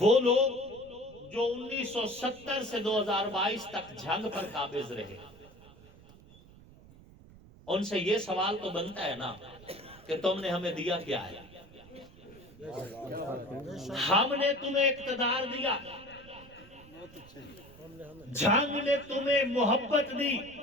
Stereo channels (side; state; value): right; noise; rumble, 22 dB below the sound